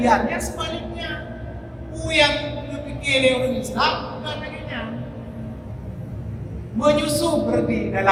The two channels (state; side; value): identical; both; correlation 1.00